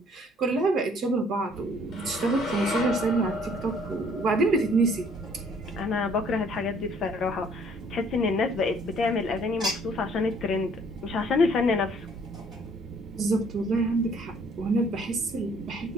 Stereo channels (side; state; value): both; normal; correlation 0.60